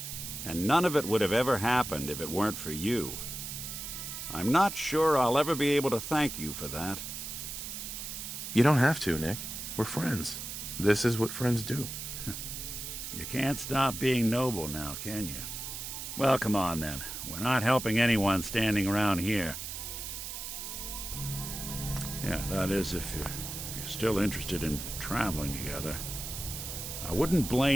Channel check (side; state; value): right; noise; hiss, 7 dB below the sound